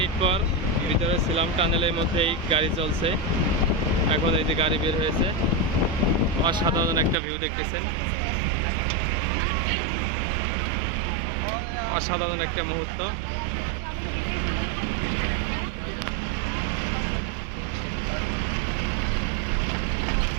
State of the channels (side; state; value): left; drops out; at 7.2 s